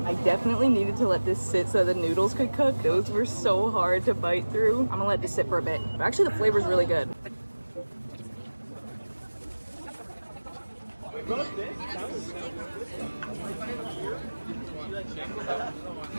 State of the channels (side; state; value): both; inverted; correlation -1.00